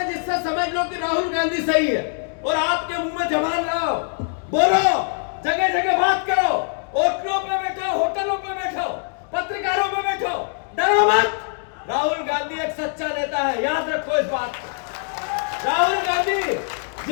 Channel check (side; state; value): right; silent; digital silence